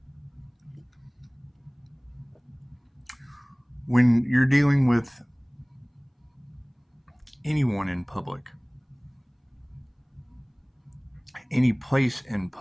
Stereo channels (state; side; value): identical; both; correlation 1.00